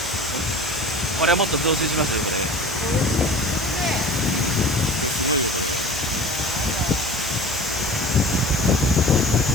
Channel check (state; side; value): normal; both; correlation 0.39